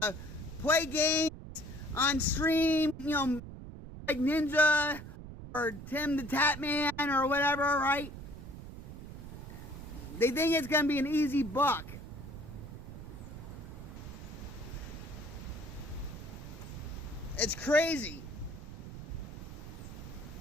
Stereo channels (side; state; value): right; noise; rumble, 11 dB below the sound